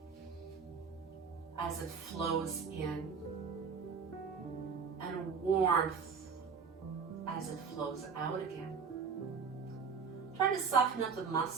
as it flows in, and a warmth as it flows out again. Try to soften up the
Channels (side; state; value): left; quieter; 5.8 dB